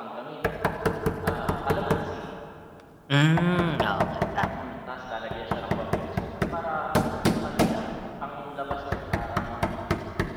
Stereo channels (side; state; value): both; identical; correlation 1.00